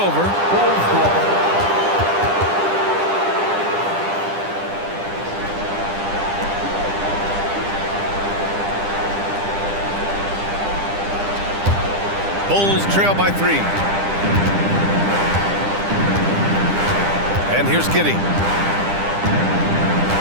Bulls trail by 3. And here's Giddey.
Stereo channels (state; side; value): late; left; 10 ms